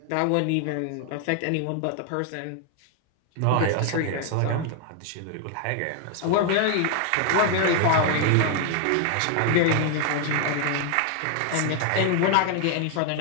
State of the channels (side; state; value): both; different; correlation 0.00